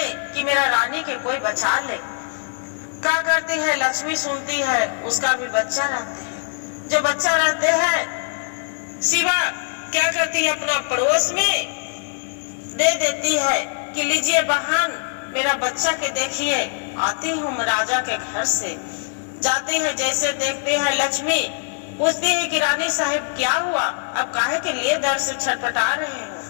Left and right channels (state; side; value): silent; right; digital silence